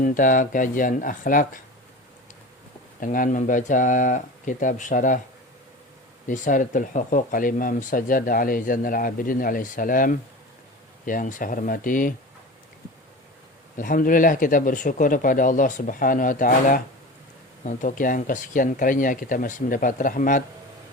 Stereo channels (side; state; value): both; normal; correlation 0.32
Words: kajian akhlak, dengan membaca kitab syarah Risalatul Huquq al-Imam Sajjad alaihi Zainal Abidin alaihi salam yang saya hormati, alhamdulillah kita bersyukur kepada Allah Subhanahu wa taala untuk yang kesekian kalinya kita masih mendapat rahmat,